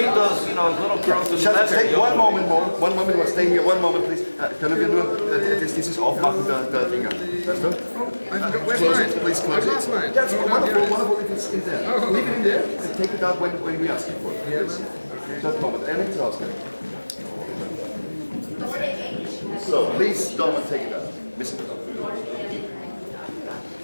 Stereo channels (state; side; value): inverted; both; correlation -1.00